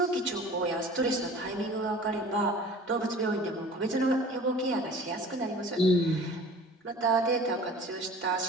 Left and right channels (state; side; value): normal; both; correlation 0.44